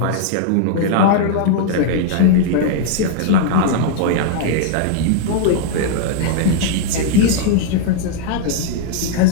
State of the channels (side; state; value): both; different; correlation -0.01